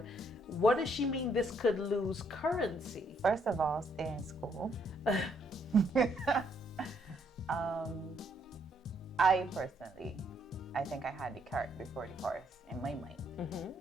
What does she mean this could lose currency? First of all, stay in school. I personally, I think I had the cart before the horse in my mind.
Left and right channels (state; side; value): normal; both; correlation 0.71